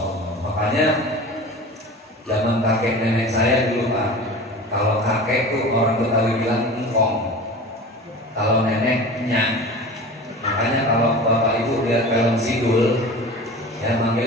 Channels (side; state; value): both; normal; correlation 0.35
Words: Allah. Makanya zaman kakek nenek saya dulu Pak, kalau kakek tuh orang Betawi bilang engkong, kalau nenek nyak. Makanya kalau bapak ibu lihat film Sidul, ya